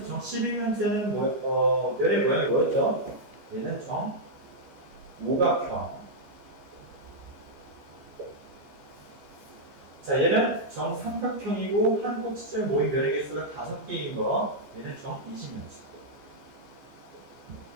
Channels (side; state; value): left; late; 14 ms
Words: 면의 모양이 뭐였죠? 얘는 정오각형. 자, 얘는 정삼각형이고 한 꼭지점에 모인 면의 개수가 5개인 거. 얘는 정20면체.